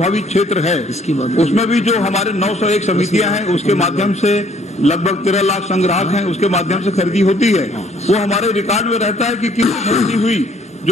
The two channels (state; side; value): normal; both; correlation 0.61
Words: क्षेत्र है उसमें भी जो हमारे 901 समितियां हैं उसके माध्यम से लगभग 13 लाख संग्राहक हैं, उसके माध्यम से खरीदी होती है। वो हमारे रिकॉर्ड में रहता है कि कितनी खरीदी हुई,